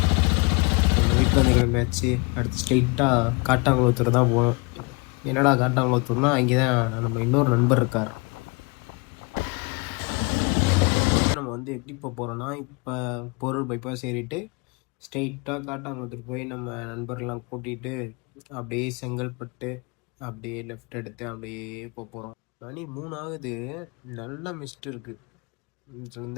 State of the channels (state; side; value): quieter; right; 29.9 dB